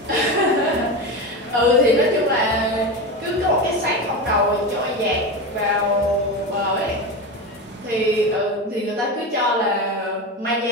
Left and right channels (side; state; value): both; normal; correlation 0.21